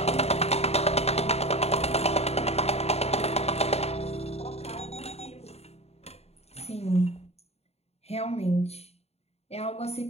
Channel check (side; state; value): right; late; 0.30 ms